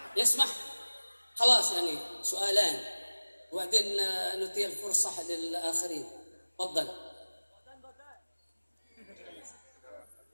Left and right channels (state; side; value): inverted; both; correlation -1.00